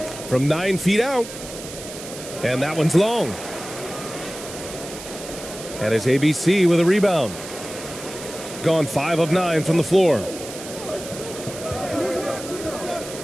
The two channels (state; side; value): noise; right; hiss, 12 dB below the sound